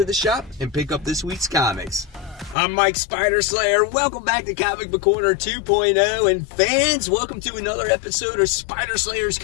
the shop and pick up this week's comics. I'm Mike Spider Slayer. Welcome back to Comic Book Corner 2.0, and fans, welcome to another episode of Spider Slayer's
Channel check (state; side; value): drops out; right; at 2.6 s